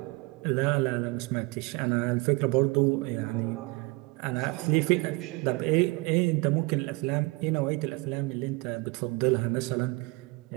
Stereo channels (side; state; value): left; quieter; 25.3 dB